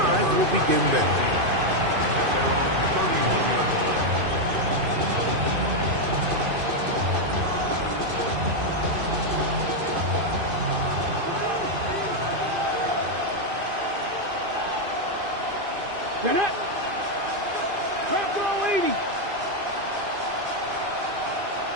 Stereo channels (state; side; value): late; left; 2.5 ms